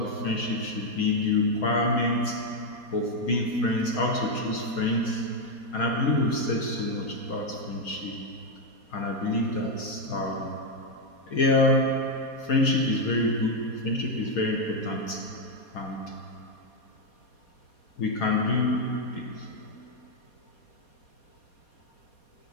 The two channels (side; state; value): right; late; 4.2 ms